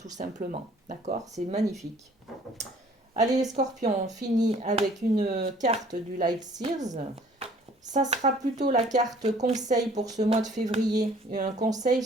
simplement. D'accord? C'est magnifique. Allez, les scorpions, on finit avec une carte du Light Sears. Ça sera plutôt la carte conseil pour ce mois de février. Un conseil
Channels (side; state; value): both; normal; correlation 0.55